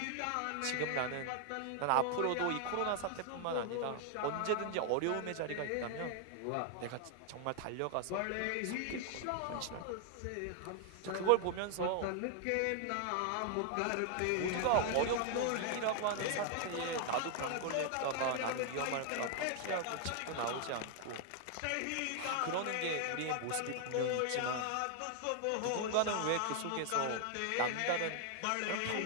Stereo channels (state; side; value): different; both; correlation 0.00